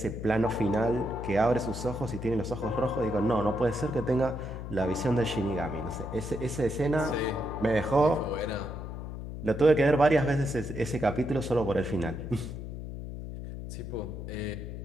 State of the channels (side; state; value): left; noise; hum, 8 dB below the sound